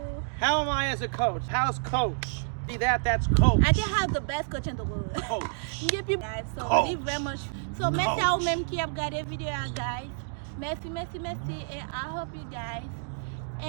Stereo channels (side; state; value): left; silent; digital silence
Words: How am I as a coach? How's Coach? See that? That's Coach. I can have the best coach in the world. Coach. Give you guys. So Coach. leave very much. So merci à vous même qui avez regardé vidéo guys. Merci. And I hope you guys